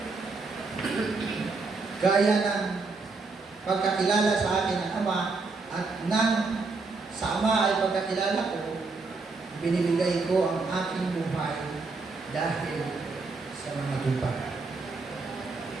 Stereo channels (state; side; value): quieter; left; 4.0 dB